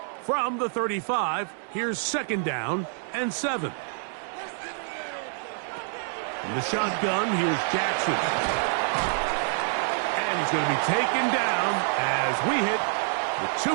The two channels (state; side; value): silent; left; 60 dB below the other